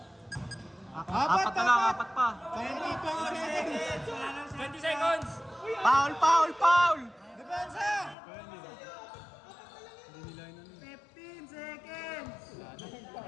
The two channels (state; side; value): drops out; right; at 8.2 s